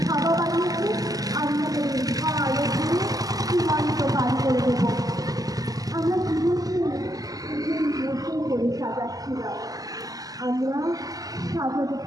খাওয়া বানিয়েছে, আমরা ভালো করে সীমান্ত পার করে দেবো। আমরা জীবনকে বসে করে সাজাচ্ছিলাম, আমরা সাজাতে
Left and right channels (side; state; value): left; late; 0.17 ms